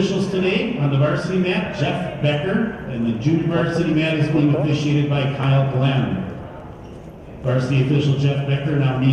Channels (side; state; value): both; identical; correlation 1.00